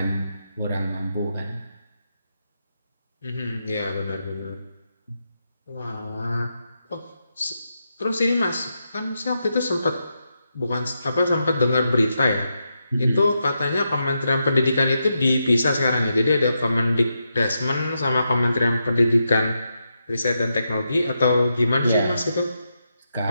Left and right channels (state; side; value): inverted; both; correlation -0.85